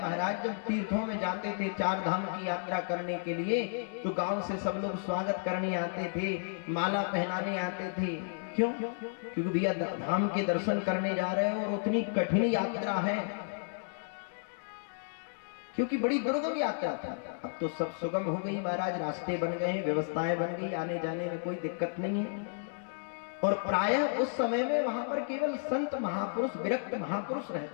जब तीर्थों में जाते थे चार धाम की यात्रा करने के लिए, तो गांव से सब लोग स्वागत करने आते थे, माला पहनाने आते थे। क्यों? क्योंकि भैया धाम के दर्शन करने जा रहे हो और उतनी कठिन यात्रा है, क्योंकि बड़ी दुर्गम यात्रा था। अब तो सब सुगम हो गई महाराज, रास्ते बन गए हैं, व्यवस्थाएं बन गई, आने जाने में कोई दिक्कत नहीं है। और प्रायः उस समय में वहां पर केवल संत महापुरुष, विरक्त महापुरुष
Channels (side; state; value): right; silent; digital silence